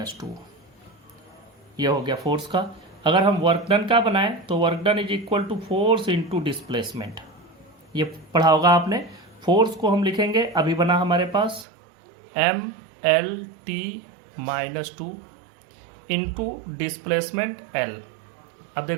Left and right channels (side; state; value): left; drops out; at 11.7 s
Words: two. ये हो गया फोर्स का। अगर हम वर्क डन का बनाएं तो work done is equal to force into displacement. ये पढ़ा होगा आपने। फोर्स को हम लिखेंगे, अभी बना हमारे पास M L T minus two into displacement L. अब